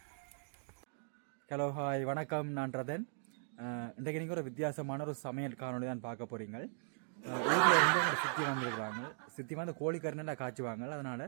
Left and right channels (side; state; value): left; silent; digital silence